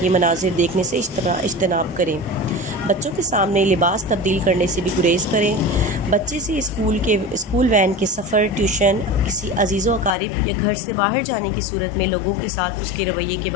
مناظر دیکھنے سے اجتناب کریں۔ بچوں کے سامنے لباس تبدیل کرنے سے بھی گریز کریں۔ بچے سے اسکول وین کے سفر، ٹیوشن، کسی عزیز و اقارب یا گھر سے باہر جانے کی صورت میں لوگوں کے ساتھ اس کے رویے کے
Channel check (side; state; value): right; drops out; at 10.2 s